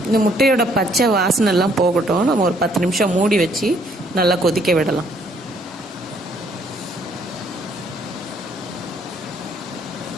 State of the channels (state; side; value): normal; both; correlation 0.65